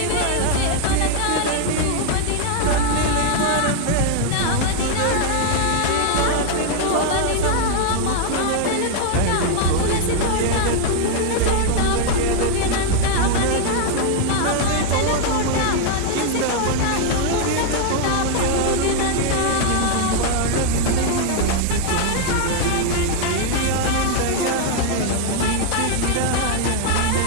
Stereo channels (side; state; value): both; different; correlation 0.00